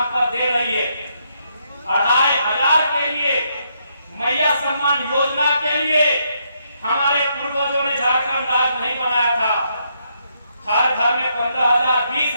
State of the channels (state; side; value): inverted; both; correlation -0.76